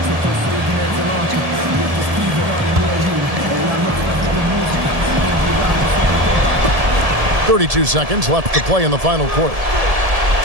32 seconds left to play in the final quarter.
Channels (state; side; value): late; left; 1.7 ms